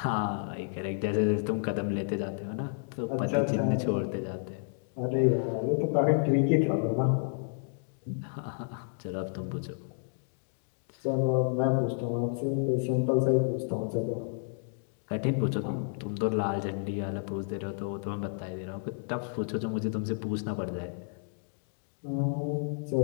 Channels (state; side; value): silent; right; digital silence